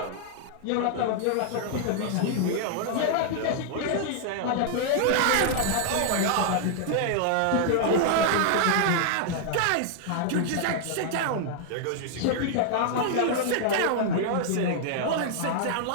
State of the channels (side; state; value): both; different; correlation 0.00